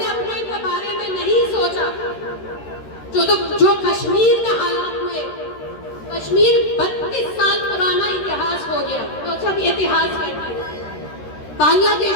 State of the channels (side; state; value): right; late; 13 ms